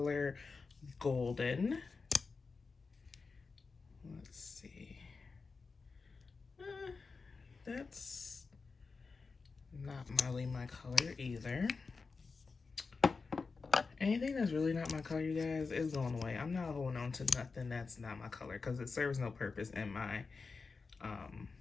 Golden. Let's see. That's not really my color either. Anything that's really not my color, you guys, is going away. I'm not holding on to nothing that's not my color because it serves no purpose in my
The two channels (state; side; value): quieter; right; 4.5 dB